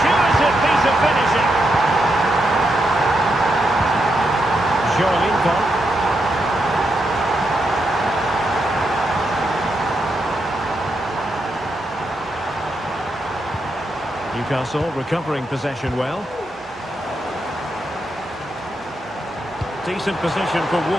piece of finishing. Joelinko. Newcastle recovering possession well. Decent position for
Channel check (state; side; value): normal; both; correlation 0.83